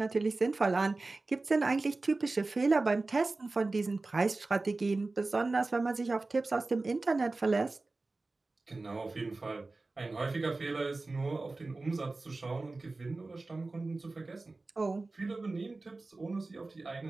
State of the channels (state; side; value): quieter; left; 3.4 dB